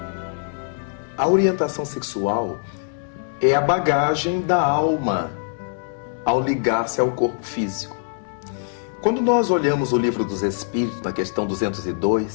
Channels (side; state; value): right; silent; digital silence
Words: A orientação sexual é a bagagem da alma ao ligar-se ao corpo físico. Quando nós olhamos o Livro dos Espíritos, na questão